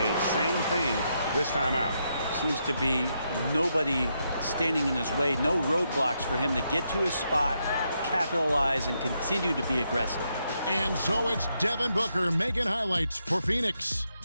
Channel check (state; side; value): inverted; both; correlation -0.80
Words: Same thing this time out. Seems to be nobody standing in his way. No roadblocks for him to get to his spot, capitalize and continue to be aggressive. And so it's Devin Booker making highlights for Phoenix.